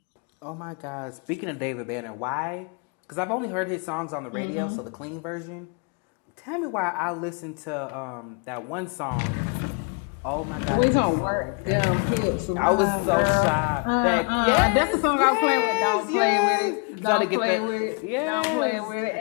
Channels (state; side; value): quieter; right; 36.6 dB